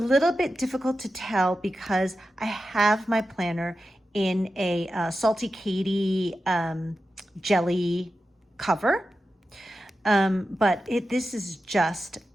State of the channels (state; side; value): normal; both; correlation 0.91